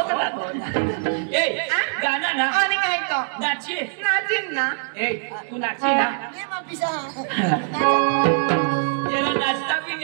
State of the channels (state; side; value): silent; left; digital silence